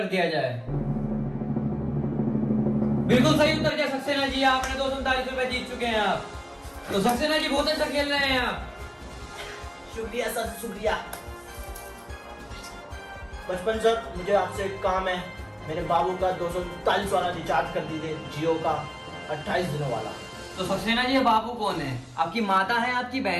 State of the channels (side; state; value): both; identical; correlation 1.00